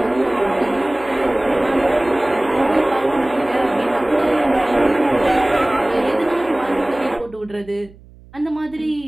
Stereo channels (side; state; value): right; noise; hum, 23 dB below the sound